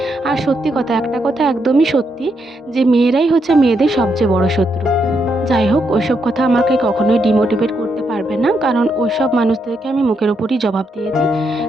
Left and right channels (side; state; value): both; normal; correlation 0.79